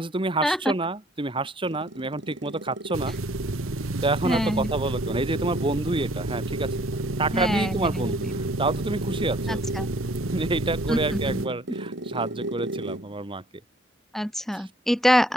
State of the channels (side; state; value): both; normal; correlation 0.59